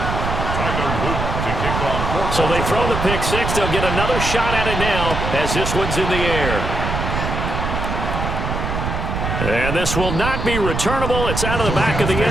So they throw the pick-6. They'll get another shot at it now as this one's in the air. And this will not be returnable. It's out of the back of the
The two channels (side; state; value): right; noise; rumble, 3 dB below the sound